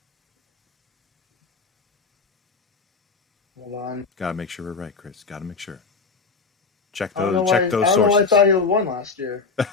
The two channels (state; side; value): quieter; right; 4.6 dB